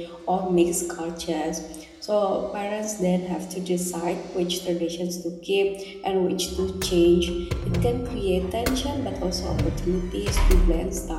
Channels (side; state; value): both; identical; correlation 1.00